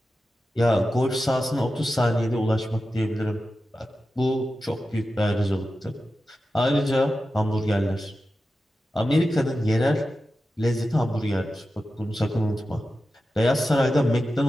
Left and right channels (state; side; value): normal; both; correlation 0.92